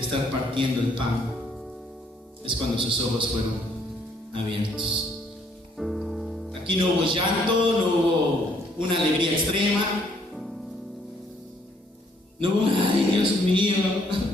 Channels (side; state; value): both; normal; correlation 0.66